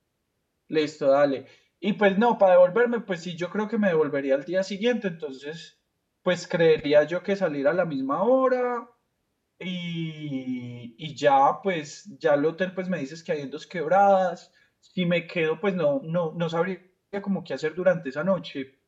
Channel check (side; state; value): both; identical; correlation 1.00